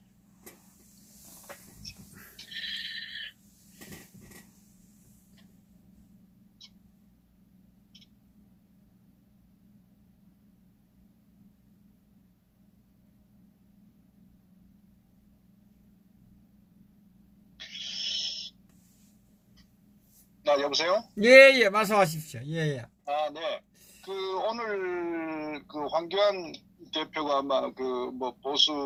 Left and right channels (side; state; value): both; identical; correlation 1.00